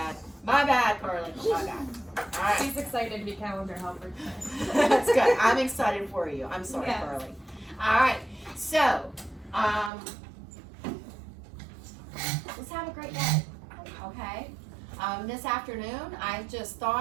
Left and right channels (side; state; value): left; drops out; at 9.9 s